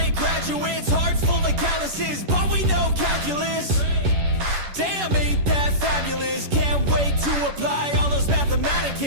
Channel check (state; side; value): late; left; 11 ms